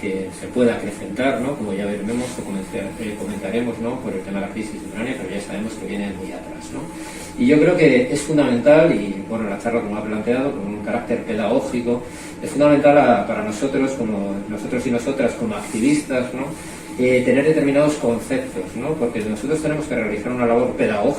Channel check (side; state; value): both; identical; correlation 1.00